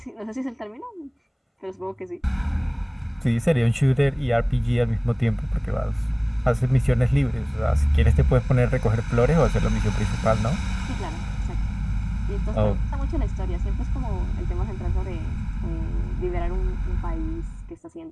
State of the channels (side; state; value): both; identical; correlation 1.00